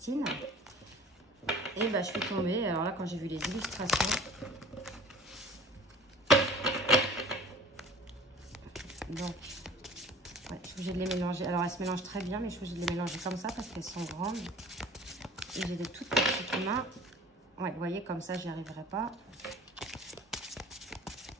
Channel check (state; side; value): normal; both; correlation 0.45